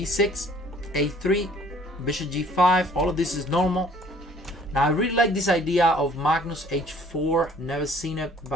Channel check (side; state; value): both; normal; correlation 0.56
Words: a3. Bishop g5, all of this is normal. Now I really like this idea of Magnus h4. Never seen it,